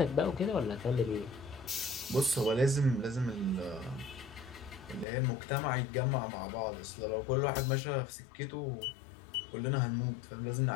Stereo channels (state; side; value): drops out; right; at 5.1 s